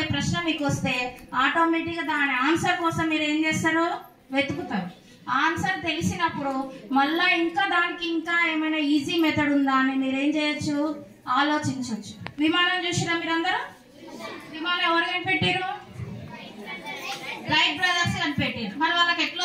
ప్రశ్న మీకు వస్తే ఆటోమేటిక్గా దాని ఆన్సర్ కోసం మీరు ఏం చేస్తారు, వెతుకుతారు. ఆన్సర్ తెలిసినప్పుడు మళ్ళీ దానికి ఇంకా ఏమైనా ఈజీ మెథడ్ ఉందా అని మీరేం చేయొచ్చు, ఆలోచించవచ్చు. విమానం చూసినా మీరందరూ? విమానం ఎవరు కనిపెట్టారు? రైట్ బ్రదర్స్ కనిపెట్టారు. మరి వాళ్ళకి ఎట్లా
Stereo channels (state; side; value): identical; both; correlation 1.00